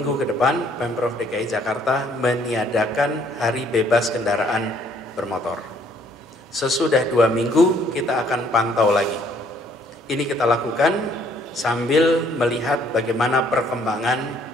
ke depan Pemprov DKI Jakarta meniadakan hari bebas kendaraan bermotor. Sesudah 2 minggu kita akan pantau lagi. Ini kita lakukan sambil melihat bagaimana perkembangan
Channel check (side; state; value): both; normal; correlation 0.63